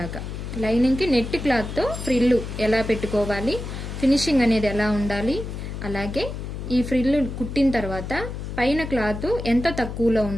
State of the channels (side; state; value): left; noise; hum, 7 dB below the sound